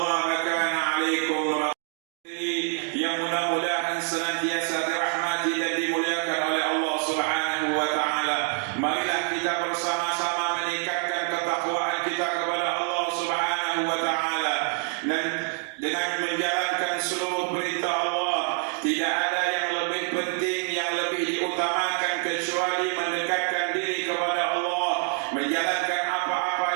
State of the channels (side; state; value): left; quieter; 39.6 dB